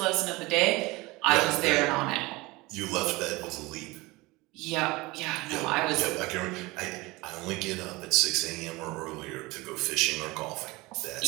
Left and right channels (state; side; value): quieter; left; 22.3 dB